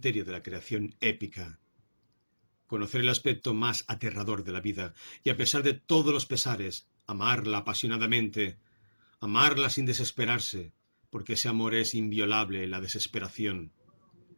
de la creación épica. Conocer el aspecto más aterrador de la vida y, a pesar de todos los pesares, amarla apasionadamente, amarla sin desesperarse, porque ese amor es inviolable en la desesperación.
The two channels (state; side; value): inverted; both; correlation -1.00